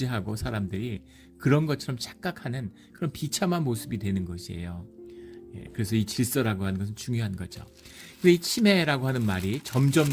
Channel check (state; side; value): identical; both; correlation 1.00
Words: 사람들이 그런 것처럼 착각하는 그런 비참한 모습이 되는 것이에요. 그래서 이 질서라고 하는 것은 중요한 거죠. 근데 이 치매라고 하는 말이 점점